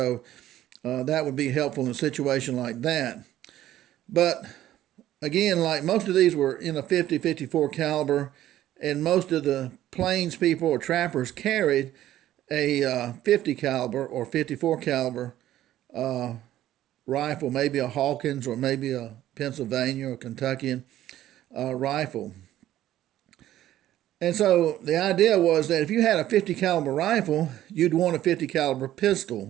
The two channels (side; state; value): left; quieter; 13.2 dB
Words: that would be helpful in a situation like that. But again, like most of these were in a 50, 54 caliber, and most of the plains people or trappers carried a 50 caliber or 54 caliber rifle, maybe a Hawkins or maybe a Pennsylvania or Kentuckian rifle. And so the idea was that if you had a 50 caliber rifle, you'd want a 50 caliber